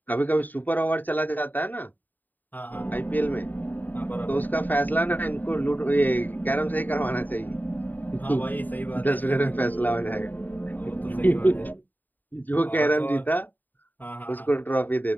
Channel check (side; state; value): right; late; 0.087 ms